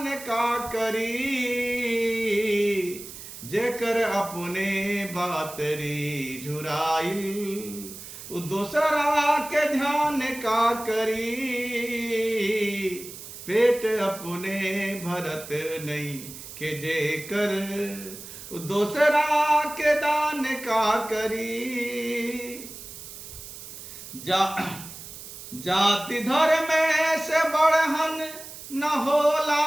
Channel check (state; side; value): noise; right; hiss, 13 dB below the sound